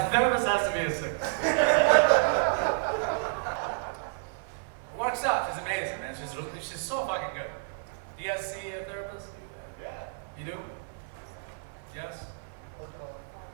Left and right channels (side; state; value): left; silent; 57 dB below the other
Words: therapist has to be a 6. Works out. She's amazing, man. She's so fucking good. Do you guys see a therapist? Yeah. You do? Yes?